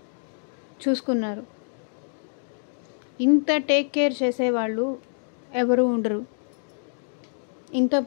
చూసుకున్నారు. ఇంత టేక్ కేర్ చేసేవాళ్ళు ఎవరు ఉండరు, ఇంత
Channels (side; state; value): right; silent; digital silence